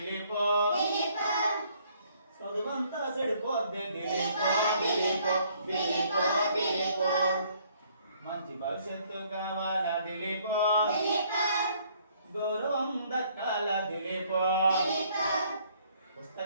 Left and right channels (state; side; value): inverted; both; correlation -0.64